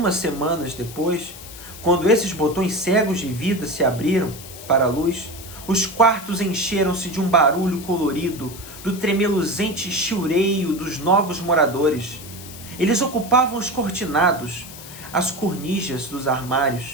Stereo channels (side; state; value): left; noise; hiss, 15 dB below the sound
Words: semanas depois, quando esses botões cegos de vida se abriram para a luz, os quartos encheram-se de um barulho colorido, do tremeluzente chiureio dos novos moradores. Eles ocupavam os cortinados, as cornijas dos